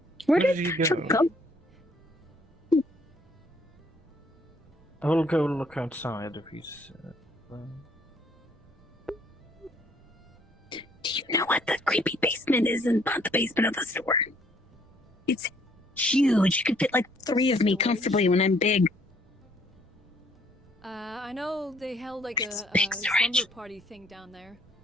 Where Where did did you Tatcha go? go? I will go look outside if he's. Do you know what the creepy basement is in the basement of the store? It's huge. You could fit like 3 of me comfortably when I'm big. I know they held like a big slumber party thing down there.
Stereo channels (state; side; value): normal; both; correlation 0.64